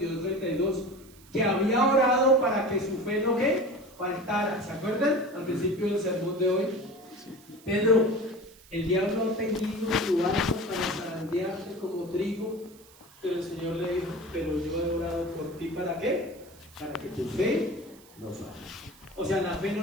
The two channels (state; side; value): noise; right; hiss, 24 dB below the sound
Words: que había orado para que su fe no ¿qué? Faltara. ¿Se acuerdan? Al principio del sermón de hoy. Pedro, el diablo ha tendido su arco para zarandearte como trigo, pero el Señor le dijo, pero yo he orado por ti, ¿para qué? Para que tu fe no falle. O sea, la fe